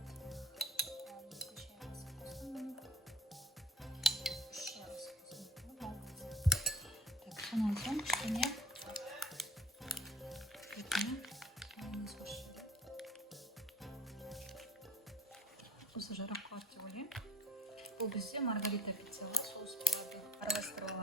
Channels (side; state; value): both; normal; correlation 0.49